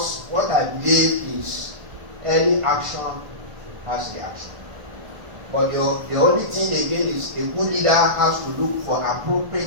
what I believe is any action has reaction. But the only thing again is a good leader has to look for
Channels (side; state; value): left; late; 1.5 ms